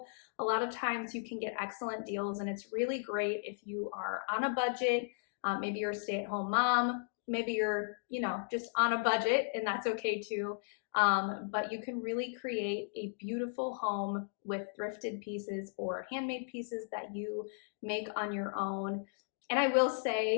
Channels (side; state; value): right; silent; digital silence